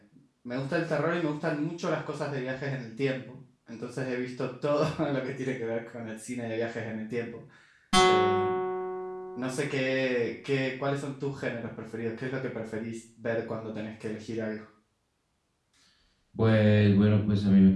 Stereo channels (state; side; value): identical; both; correlation 1.00